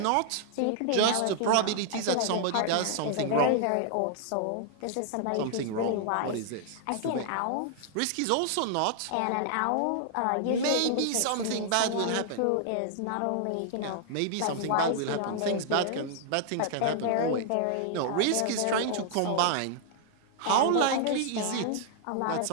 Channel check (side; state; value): both; different; correlation -0.01